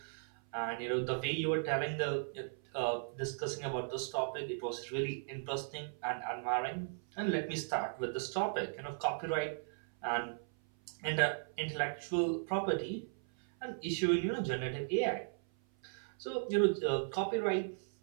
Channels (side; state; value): left; silent; 53 dB below the other